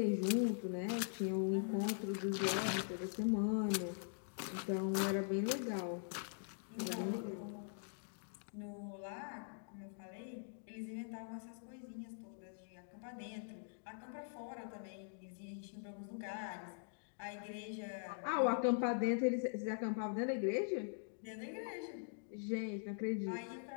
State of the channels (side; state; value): right; silent; digital silence